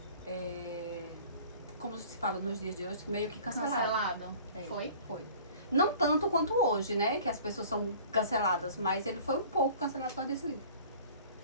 como se fala nos dias de hoje, meio que cancelado. É, Foi? Foi. Não tanto quanto hoje, né? Que as pessoas são canceladas, mas ele foi um pouco cancelado por desse livro.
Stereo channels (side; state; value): both; inverted; correlation -0.47